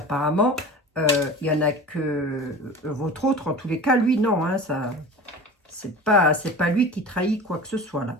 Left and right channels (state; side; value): normal; both; correlation 0.36